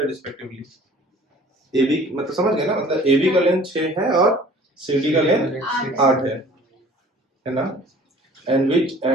respectively. AB मतलब समझ गए ना, मतलब AB का लेंथ 6 है और CD का लेंथ 8 है ना।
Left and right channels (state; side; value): normal; both; correlation 0.50